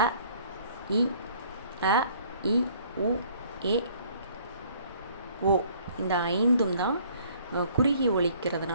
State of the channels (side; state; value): both; inverted; correlation -0.57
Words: அ இ உ ஏ ஓ இந்த 5ம் தான் குறுகி